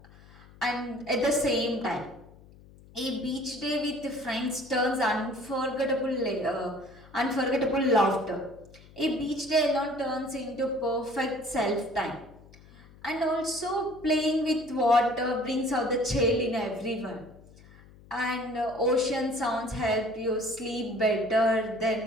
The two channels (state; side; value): noise; left; hum, 23 dB below the sound